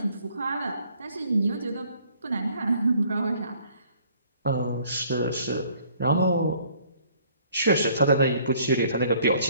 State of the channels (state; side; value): inverted; both; correlation -0.60